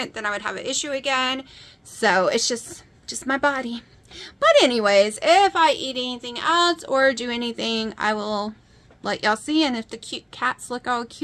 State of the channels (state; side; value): identical; both; correlation 1.00